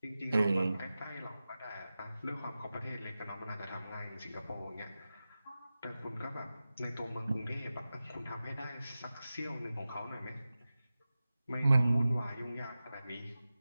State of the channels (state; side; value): inverted; both; correlation -0.94